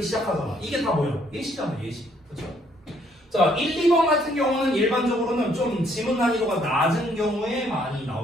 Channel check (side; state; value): both; normal; correlation 0.67